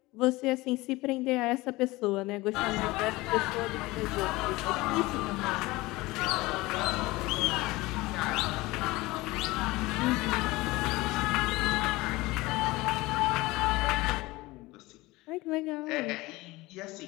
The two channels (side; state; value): right; quieter; 20.8 dB